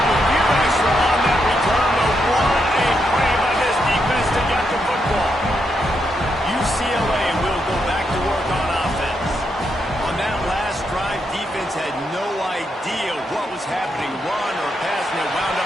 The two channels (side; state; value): both; normal; correlation 0.81